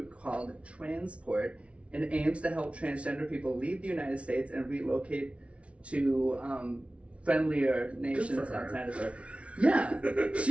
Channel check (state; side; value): late; left; 0.062 ms